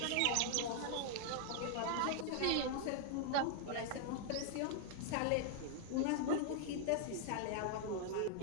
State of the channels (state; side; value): different; both; correlation 0.00